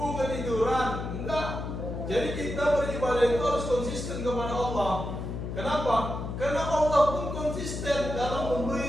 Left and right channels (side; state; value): left; noise; hum, 5 dB below the sound